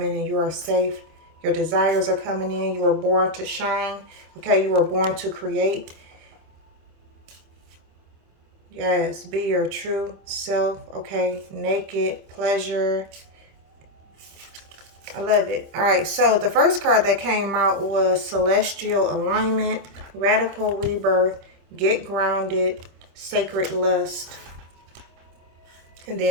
and you are safe. Your desires are coming in. You were born to shine, okay? You were born to create. Yes, be your true self, okay? Naked, pleasure. I love it. All right, so the first card that came out was Celestial Alignment, Radical Rebirth, Get Grounded, Sacred Lust, and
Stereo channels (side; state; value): left; late; 26 ms